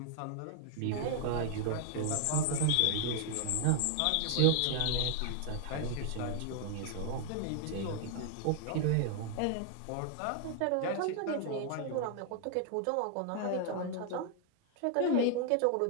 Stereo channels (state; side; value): different; both; correlation 0.00